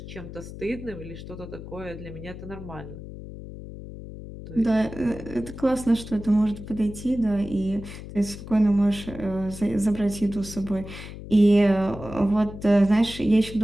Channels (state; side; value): noise; left; hum, 12 dB below the sound